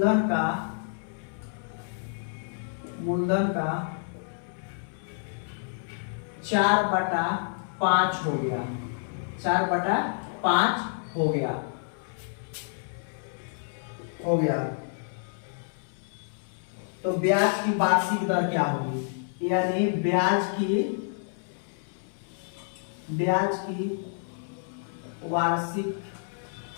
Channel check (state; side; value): silent; right; 59 dB below the other